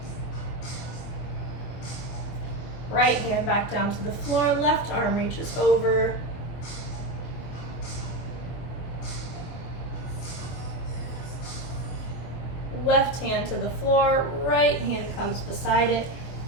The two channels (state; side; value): late; right; 24 ms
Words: Right hand back down to the floor, left arm reaches over. Left hand to the floor, right hand comes beside it,